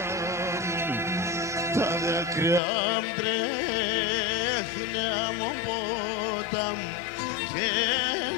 μου. Τα δάκρυα μ' τρέχνει από ποτάμ και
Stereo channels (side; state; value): right; drops out; at 2.6 s